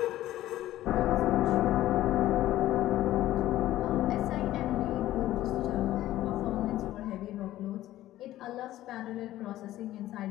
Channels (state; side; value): quieter; right; 14.5 dB